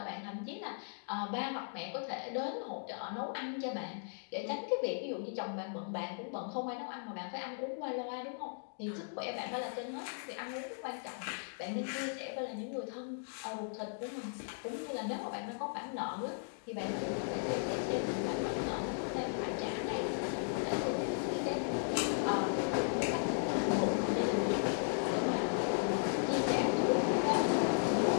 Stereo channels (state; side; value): silent; right; digital silence